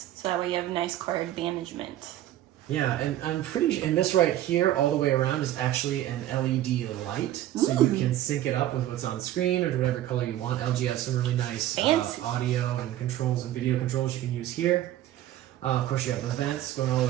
so that way you have nice cord management. Yeah, and I'm pretty, and this right here all the way around is actually an LED light. So you can sync it up with what's on screen or whatever color you want. LG has some really nice audio and controls and video controls you can use here. Of course, you have the vents going all the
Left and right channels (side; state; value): left; quieter; 13.3 dB